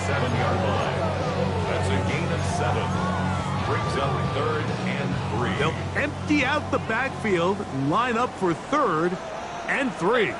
brings up 3rd and 3. They'll empty out the backfield and line up for 3rd and 3.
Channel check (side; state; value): both; identical; correlation 1.00